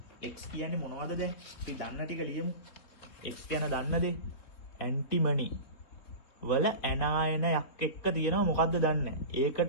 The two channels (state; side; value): late; right; 3.6 ms